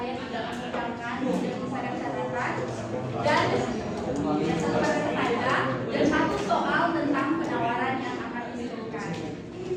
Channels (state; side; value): identical; both; correlation 1.00